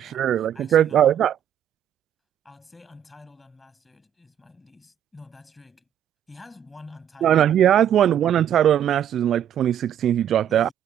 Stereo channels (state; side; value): quieter; left; 10.1 dB